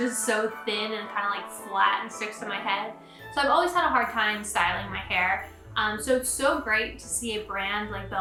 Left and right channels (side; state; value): both; identical; correlation 1.00